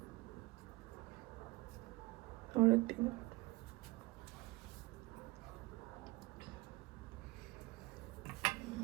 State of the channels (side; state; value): left; quieter; 22.8 dB